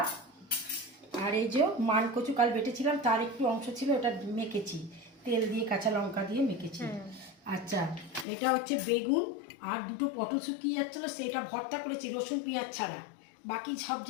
আর এই যে মান কচু কাল বেটেছিলাম, তার একটু অংশ ছিল, ওটা মেখেছি তেল দিয়ে, কাঁচা লঙ্কা দিয়ে মেখেছি। আচ্ছা, এটা হচ্ছে বেগুন আর দুটো পটল শুকিয়ে যাচ্ছিলো, সেটা ভর্তা করেছি রসুন পেঁয়াজ ছাড়া। বাকি সব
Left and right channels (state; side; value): drops out; right; at 8.2 s